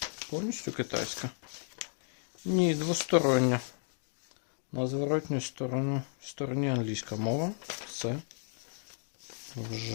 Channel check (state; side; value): silent; right; digital silence